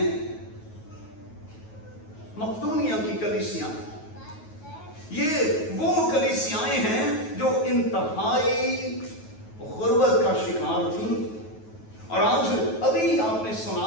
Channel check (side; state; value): right; late; 9.3 ms